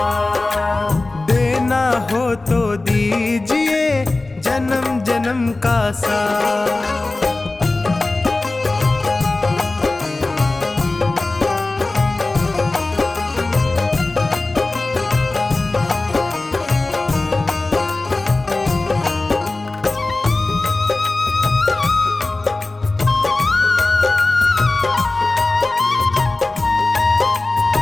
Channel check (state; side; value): quieter; right; 3.1 dB